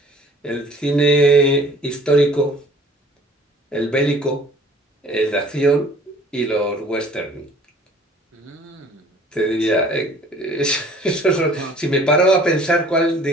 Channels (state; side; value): normal; both; correlation 0.52